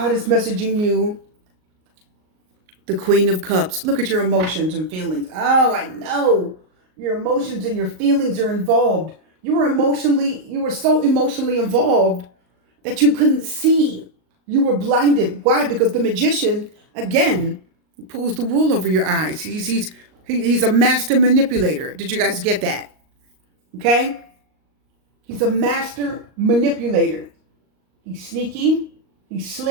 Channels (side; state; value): left; late; 38 ms